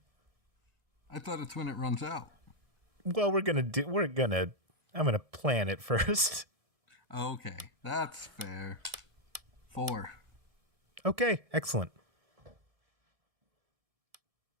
I thought it's when it runs out. Well, I'm gonna plan it first. Okay, that's fair. 4. Okay, excellent.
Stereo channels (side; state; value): left; late; 1.7 ms